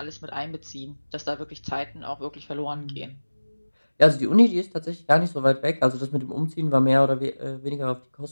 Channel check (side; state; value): both; inverted; correlation -1.00